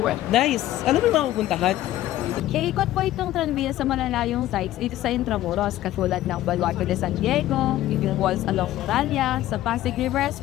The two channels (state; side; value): quieter; right; 14.3 dB